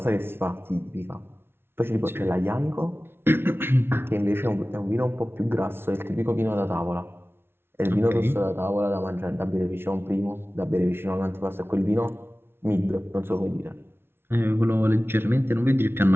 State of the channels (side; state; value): left; late; 0.11 ms